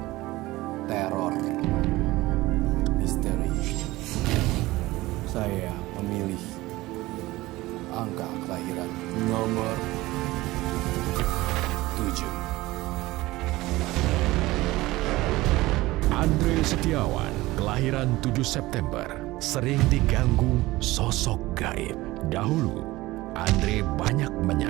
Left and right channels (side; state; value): left; quieter; 18.9 dB